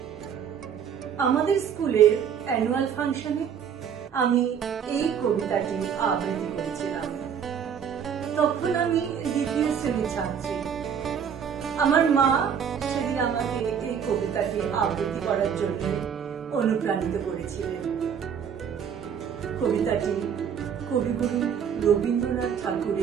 আমাদের স্কুলের অ্যানুয়াল ফাংশনে আমি এই কবিতাটি আবৃত্তি করেছিলাম। তখন আমি দ্বিতীয় শ্রেণীর ছাত্রী। আমার মা সেদিন আমাকে এই কবিতাটি আবৃত্তি করার জন্য অনুপ্রাণিত করেছিলেন। কবিতাটি কবিগুরু রবীন্দ্রনাথ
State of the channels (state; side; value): quieter; left; 7.7 dB